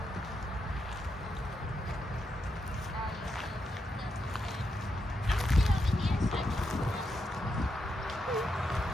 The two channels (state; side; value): normal; both; correlation 0.83